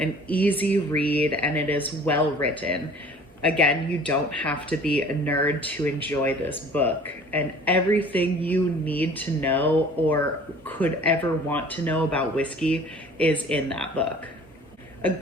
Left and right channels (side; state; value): both; normal; correlation 0.48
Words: easy read, and it is well written. Again, you don't have to be a nerd to enjoy this book, and everything you need to know or could ever want to know about whiskey is in that book. A